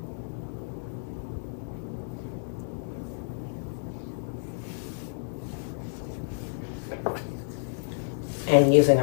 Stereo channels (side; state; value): right; silent; 58 dB below the other